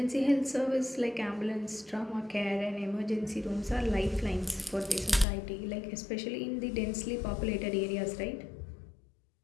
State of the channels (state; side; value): drops out; right; at 5.2 s